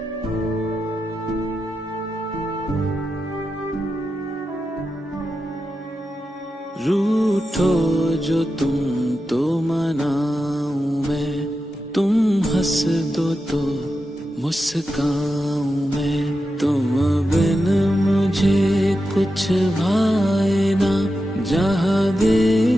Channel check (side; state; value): both; normal; correlation 0.89